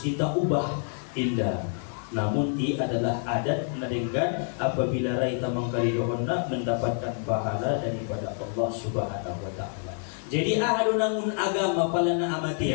ubah indah. Namun ini adalah adat nadenggan apabila raita mangkaridohon na mendapatkan pahala daripada Allah Subhanahu wa taala. Jadi ahadu namun agama pala na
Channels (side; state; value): right; silent; 60 dB below the other